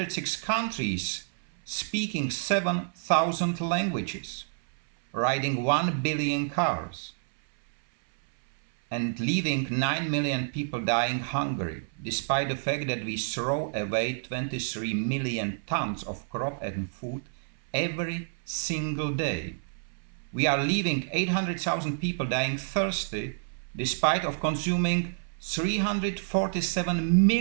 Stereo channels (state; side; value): silent; left; 59 dB below the other